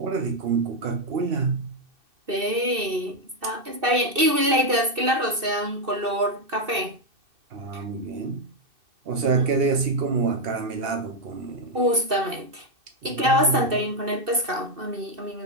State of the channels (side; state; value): left; late; 2.6 ms